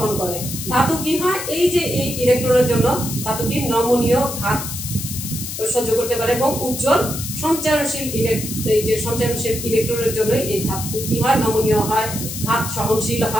করে। ধাতু কি হয়, এই যে এই ইলেকট্রনের জন্য ধাতু কি নমনীয় ঘাত সহ্য করতে পারে এবং উজ্জ্বল সঞ্চারণশীল এই যে সঞ্চারণশীল ইলেকট্রনের জন্য এই ধাতু কি হয়, নমনীয় হয়, ঘাত সহনশীল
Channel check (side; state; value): left; noise; hiss, 7 dB below the sound